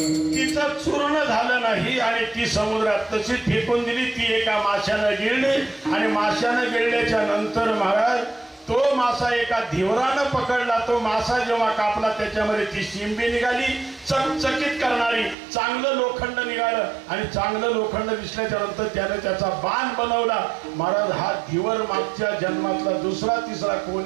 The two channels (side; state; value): left; drops out; at 15.4 s